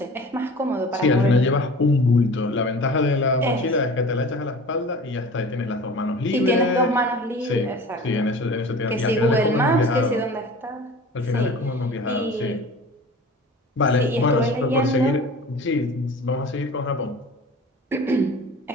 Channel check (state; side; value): normal; both; correlation 0.40